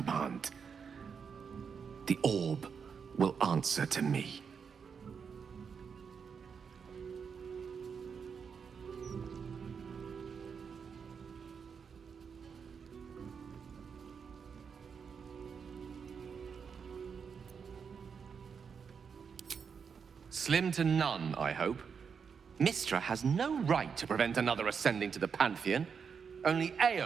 The orb will answer to me. Slim to none, I hope. Mystra has no right to prevent another ascending to the Pantheon. Only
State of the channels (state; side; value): quieter; left; 6.3 dB